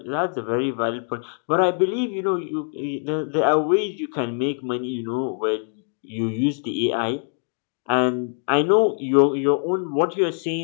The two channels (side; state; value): right; silent; 63 dB below the other